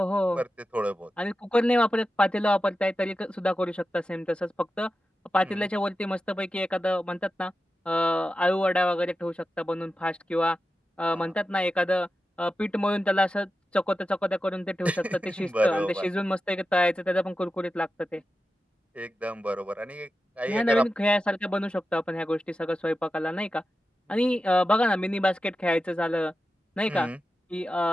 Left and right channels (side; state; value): both; normal; correlation 0.92